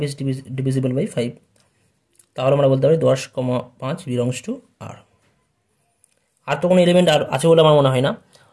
ইজ ডিভিজিবল বাই 5, তাহলে আমরা বলতে পারি 10, 5 বিলংস টু আর। আর তো কোনো এলিমেন্ট আর আছে বলে আমার মনে হয় না।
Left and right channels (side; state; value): both; identical; correlation 1.00